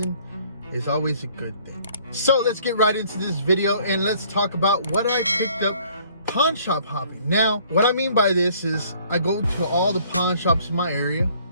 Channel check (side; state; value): both; inverted; correlation -0.59